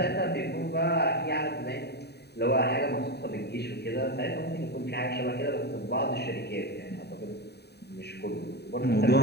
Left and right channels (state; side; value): late; right; 0.48 ms